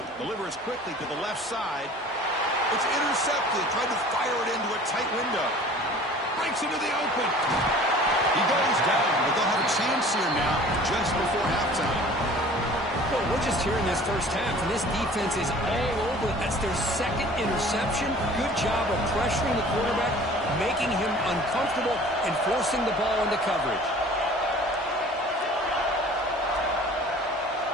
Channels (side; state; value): both; normal; correlation 0.47